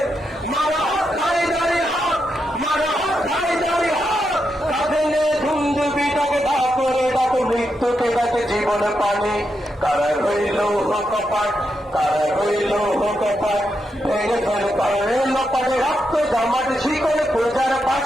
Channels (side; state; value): both; normal; correlation 0.84